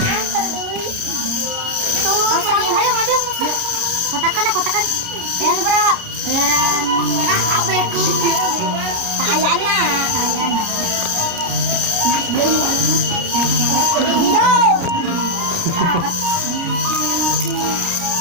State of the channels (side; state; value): left; late; 29 ms